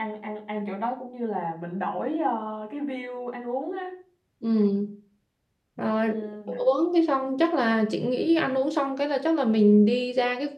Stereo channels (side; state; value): both; identical; correlation 1.00